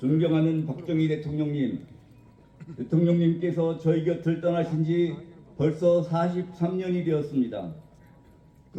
박정희 대통령님께서 저희 곁을 떠나신 지 벌써 43년이 되었습니다.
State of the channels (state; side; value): identical; both; correlation 1.00